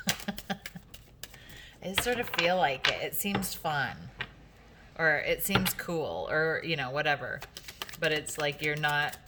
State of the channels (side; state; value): both; identical; correlation 1.00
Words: I just sort of feel like it. It seems fun, or it seems cool, or, you know, whatever. But it's like you're not,